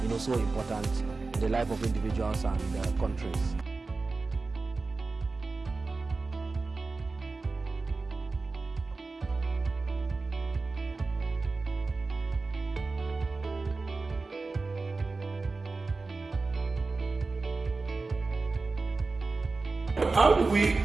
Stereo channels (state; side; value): quieter; left; 3.8 dB